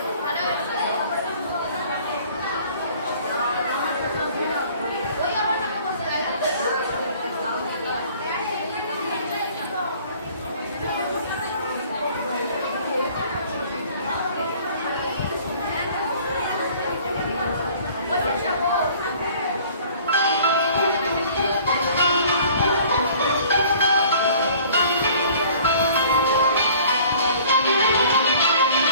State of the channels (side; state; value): both; inverted; correlation -0.52